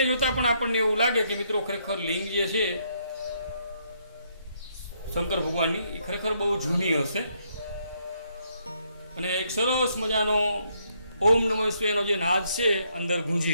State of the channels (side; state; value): both; inverted; correlation -0.73